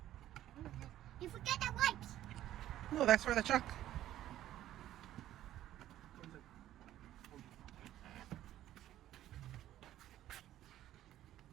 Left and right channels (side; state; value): left; quieter; 13.0 dB